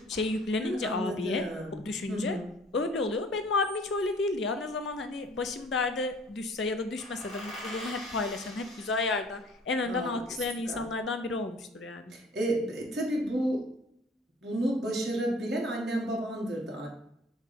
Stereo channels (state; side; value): normal; both; correlation 0.51